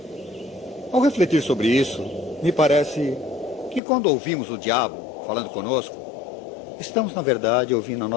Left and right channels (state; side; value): drops out; right; at 3.8 s